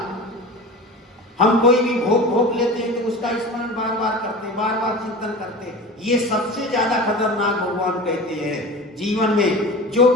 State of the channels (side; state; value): both; normal; correlation 0.34